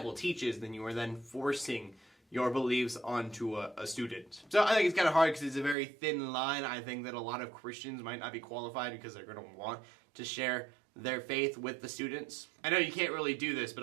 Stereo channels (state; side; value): drops out; left; at 5.8 s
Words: teaches, then you are then forcing your beliefs onto a student. So I think it's kind of hard because it's a very thin line. I think that a lot of Christians might not be qualified because they're going to want to share their faith with the students. I know you can't really do this, but